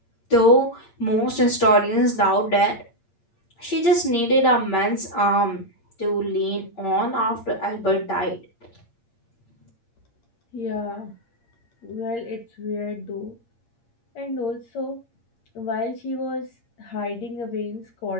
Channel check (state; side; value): late; right; 8.7 ms